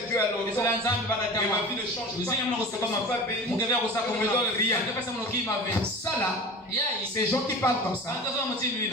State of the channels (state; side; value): normal; both; correlation 0.35